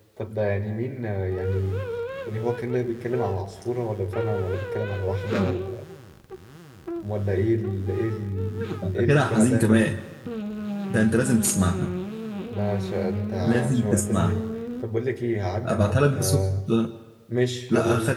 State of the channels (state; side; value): identical; both; correlation 1.00